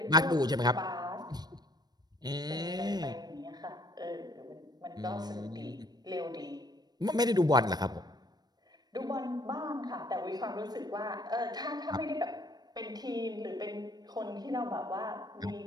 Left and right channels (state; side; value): late; left; 0.19 ms